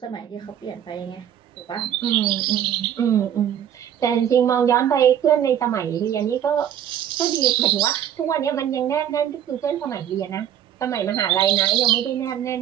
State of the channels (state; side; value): quieter; left; 10.0 dB